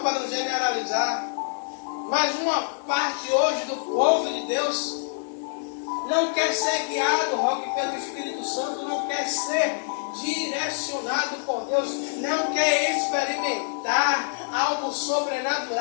para não generalizar, mas uma parte hoje do povo de Deus não quer ser guiado, Roque, pelo Espírito Santo, não quer ser direcionado por Deus, não quer experimentar algo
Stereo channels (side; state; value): right; silent; digital silence